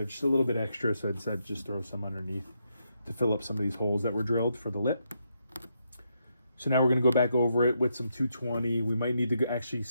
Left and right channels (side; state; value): both; inverted; correlation -0.80